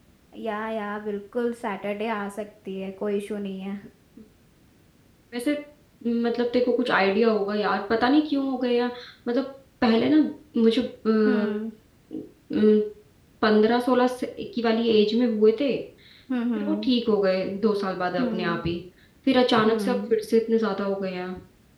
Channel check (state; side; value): identical; both; correlation 1.00